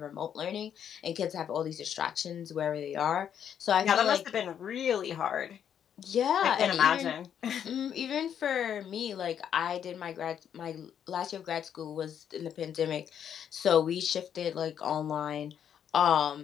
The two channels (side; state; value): right; quieter; 8.8 dB